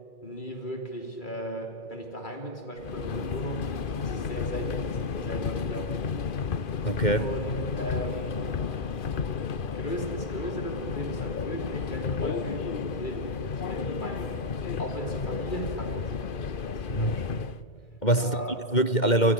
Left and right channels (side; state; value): right; late; 2.1 ms